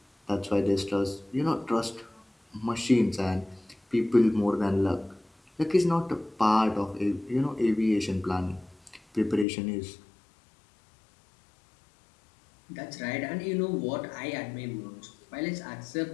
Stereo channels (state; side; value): drops out; right; at 9.5 s